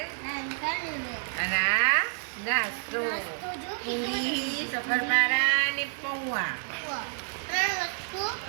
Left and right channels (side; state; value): left; silent; digital silence